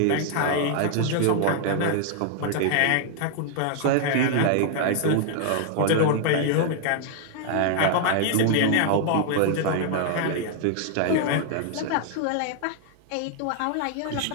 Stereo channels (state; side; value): different; both; correlation 0.00